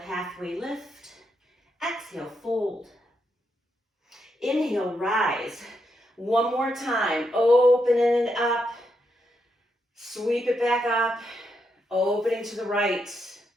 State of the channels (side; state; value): both; normal; correlation 0.81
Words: lift. Exhale, fold. Inhale, rise. One more time, opening it up. Sweep it back up, opening to the right.